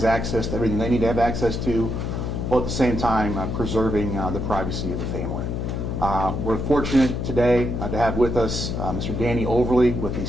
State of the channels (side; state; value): left; noise; hum, 2 dB below the sound